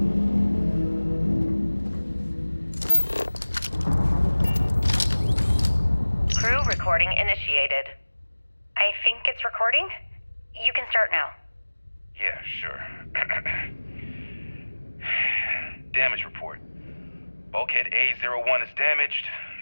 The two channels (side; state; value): both; inverted; correlation -1.00